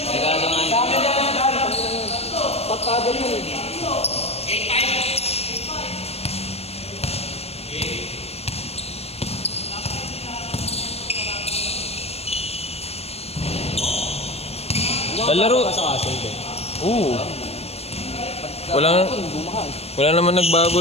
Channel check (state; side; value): late; right; 0.30 ms